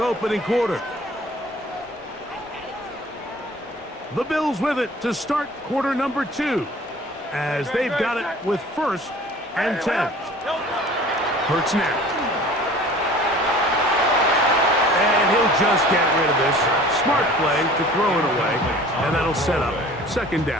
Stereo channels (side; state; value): both; normal; correlation 0.46